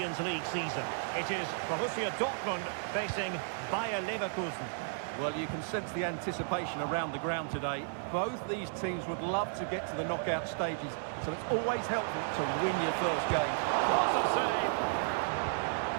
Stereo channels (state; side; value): silent; left; digital silence